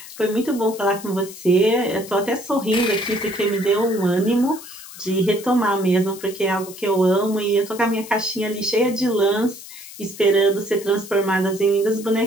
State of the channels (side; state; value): left; noise; hiss, 15 dB below the sound